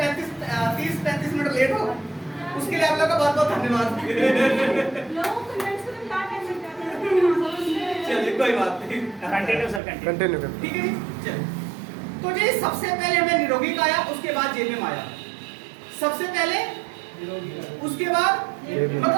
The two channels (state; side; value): drops out; left; at 9.8 s